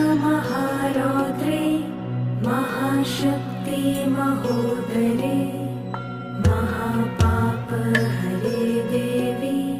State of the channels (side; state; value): both; identical; correlation 1.00